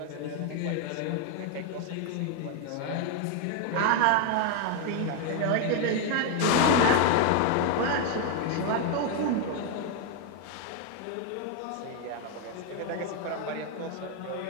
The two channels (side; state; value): both; different; correlation 0.01